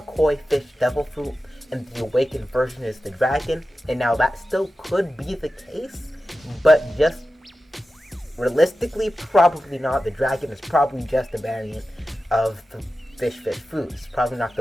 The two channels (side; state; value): both; normal; correlation 0.93